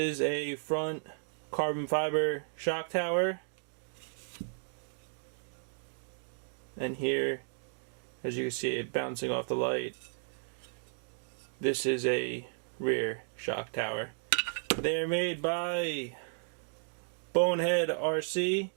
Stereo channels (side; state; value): left; silent; digital silence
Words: a front carbon fiber shock tower. And here, as you can see it bouncing off the light, this is a rear shock tower. They're made by Bonehead RC.